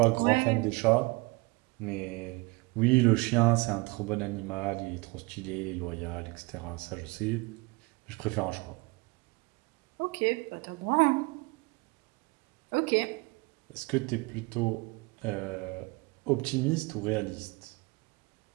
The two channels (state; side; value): quieter; left; 25.9 dB